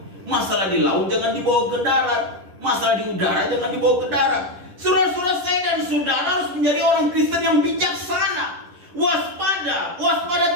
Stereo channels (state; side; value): late; left; 10 ms